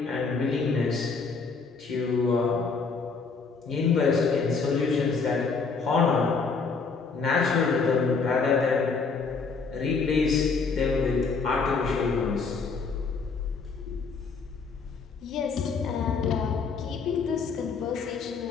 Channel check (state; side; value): quieter; right; 4.8 dB